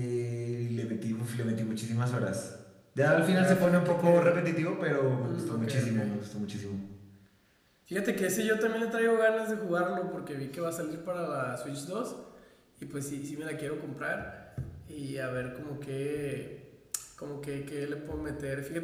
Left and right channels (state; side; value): identical; both; correlation 1.00